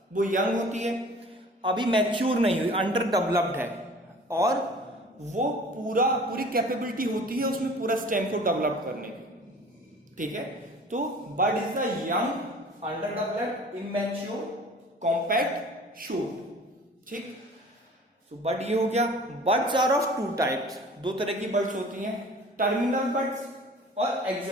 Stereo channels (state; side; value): normal; both; correlation 0.46